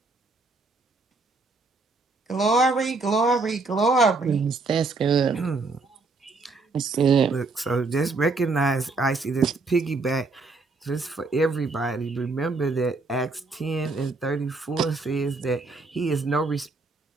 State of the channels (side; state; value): left; quieter; 3.7 dB